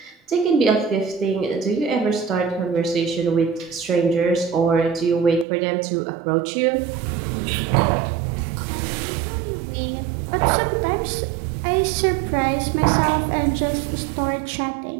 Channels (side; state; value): left; drops out; at 5.5 s